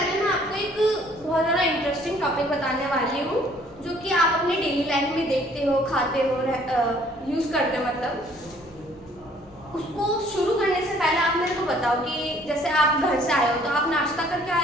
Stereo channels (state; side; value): normal; both; correlation 0.59